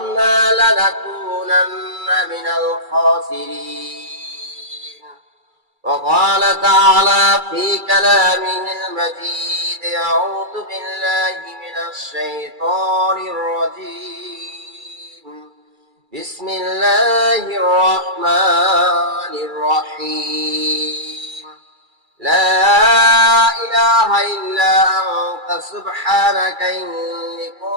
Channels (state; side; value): late; left; 2.3 ms